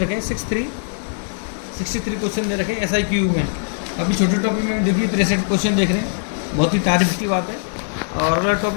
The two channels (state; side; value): silent; right; digital silence